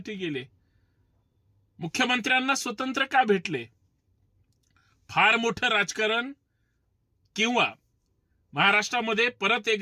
गेले? मुख्यमंत्र्यांना स्वतंत्र का भेटले? फार मोठं राजकारण किंवा महाराष्ट्रामध्ये परत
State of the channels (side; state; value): both; identical; correlation 1.00